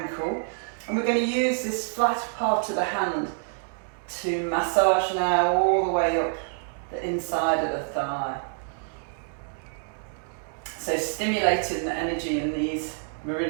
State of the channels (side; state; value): left; silent; digital silence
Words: and we're going to use this flat part of the hand to massage now all the way up the inside of the thigh. So stimulating the energy in these